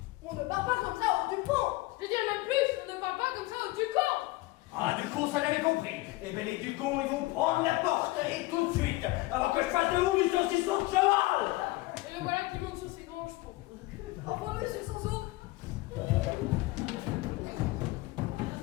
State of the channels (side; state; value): right; quieter; 19.8 dB